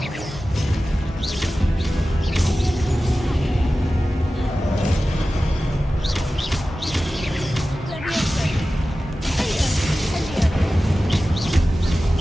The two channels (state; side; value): normal; both; correlation 0.95